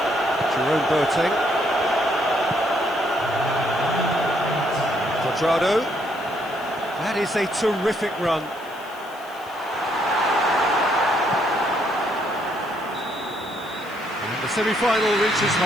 Jerome Boateng. Quadrado. That is a terrific run. And the semi-final reaches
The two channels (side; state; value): left; noise; hiss, 23 dB below the sound